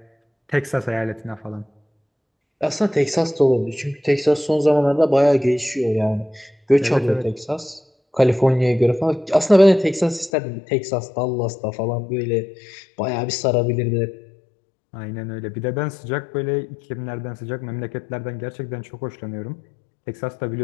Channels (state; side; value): drops out; right; at 10.3 s